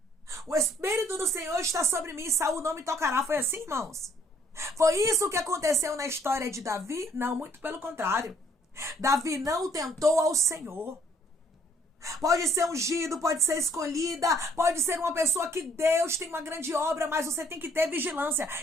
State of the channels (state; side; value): normal; both; correlation 0.64